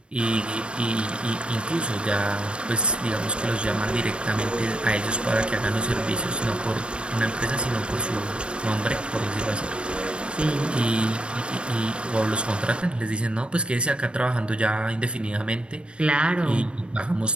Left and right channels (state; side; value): late; left; 0.057 ms